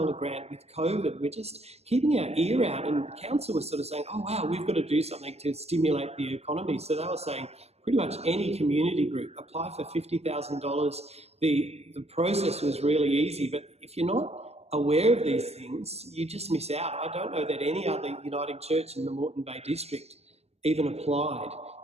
grant with COVID. We're just keeping our ear out, and the council was sort of saying, oh wow, we've got to do something to stimulate the economy. So they were saying pretty much any community group, apply for $50,000. The process was really easy, but if you're not aware of these things, you just miss out. I don't know that any other Uniting Church in the Moreton Bay district even applied.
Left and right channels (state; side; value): late; left; 0.30 ms